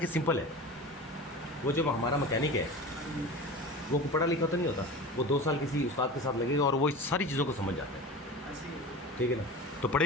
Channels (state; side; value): normal; both; correlation 0.33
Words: सिंपल है। वो जो हमारा मैकेनिक है वो पढ़ा लिखा तो नहीं होता, वो 2 साल किसी उस्ताद के साथ लगेगा और वो सारी चीज़ों को समझ जाता है, ठीक है ना? तो पढ़े